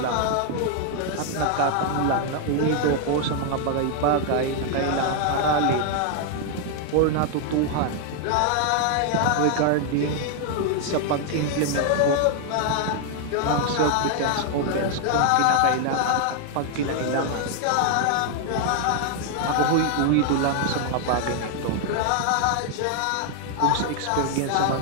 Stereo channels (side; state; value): both; different; correlation 0.00